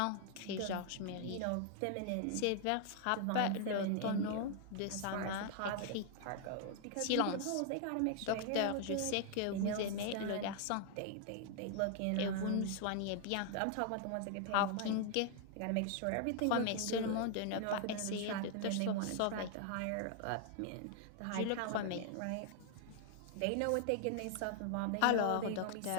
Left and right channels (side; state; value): both; different; correlation 0.00